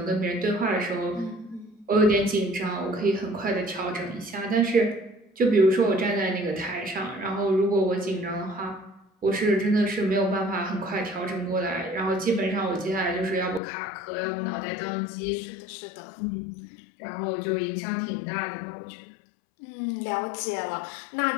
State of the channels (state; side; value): drops out; right; at 13.6 s